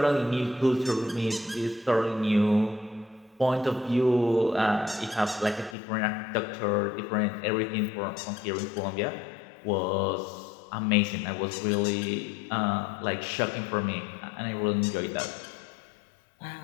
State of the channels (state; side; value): drops out; right; at 5.8 s